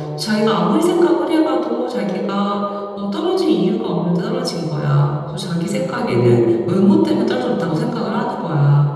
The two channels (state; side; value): identical; both; correlation 1.00